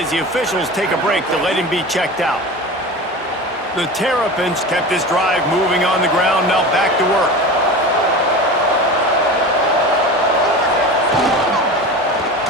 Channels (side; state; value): both; normal; correlation 0.31